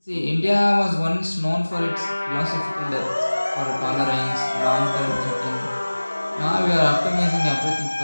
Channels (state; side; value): inverted; both; correlation -1.00